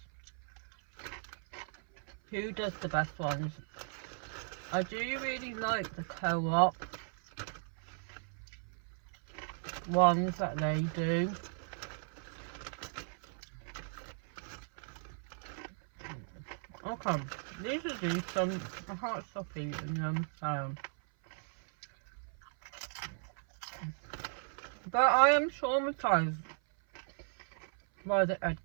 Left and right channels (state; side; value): silent; left; 53 dB below the other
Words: Who does the best ones? I do really like the Co-op ones that they do. Okay, these are decent. I can't stop eating them, so. But I am traumatised by the Ed